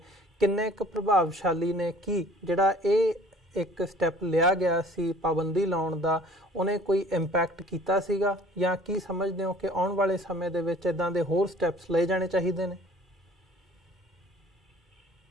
ਕਿੰਨੇ ਕੁ ਪ੍ਰਭਾਵਸ਼ਾਲੀ ਨੇ? ਕੀ ਜਿਹੜਾ ਇਹ ਇੱਕ ਸਟੈਪ ਲਿਆ ਗਿਆ ਸੀ ਪਾਬੰਦੀ ਲਾਉਣ ਦਾ, ਉਹਨੇ ਕੋਈ ਇੰਪੈਕਟ ਕੀਤਾ ਸੀਗਾ ਜਾਂ ਕੀ ਸਮਝਦੇ ਹੋ ਕਿ ਆਉਣ ਵਾਲੇ ਸਮੇਂ ਦੇ ਵਿੱਚ ਇੱਦਾਂ ਦੇ ਹੋਰ ਸਟੈਪਸ ਲਏ ਜਾਣੇ ਚਾਹੀਦੇ ਨੇ?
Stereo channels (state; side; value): normal; both; correlation 0.51